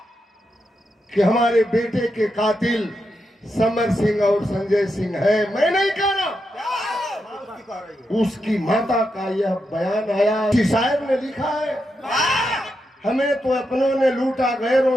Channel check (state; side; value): normal; both; correlation 0.85